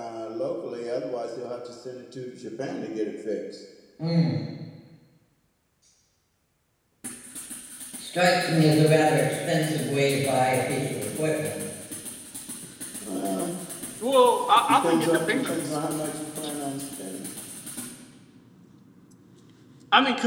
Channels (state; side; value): identical; both; correlation 1.00